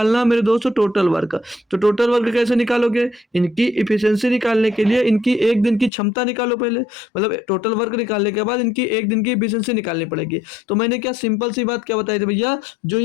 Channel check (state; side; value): drops out; right; at 5.9 s